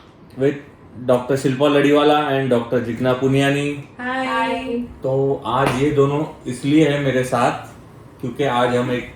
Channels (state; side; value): identical; both; correlation 1.00